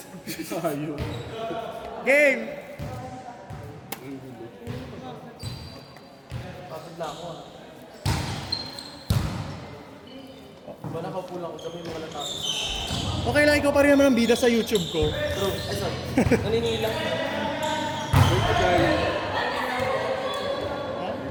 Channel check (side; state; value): both; identical; correlation 1.00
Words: Sayo. Game! Kapit na ako. Diba nakaupo lang ako, sabi mo wala tapos. Okay lang, ikaw pa rin naman ang bida sa YouTube ko. Bro, ay sorry. Naninila.